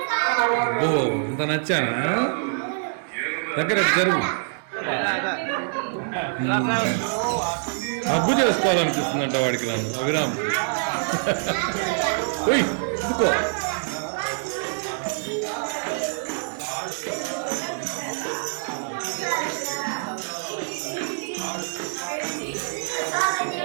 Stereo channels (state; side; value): silent; left; digital silence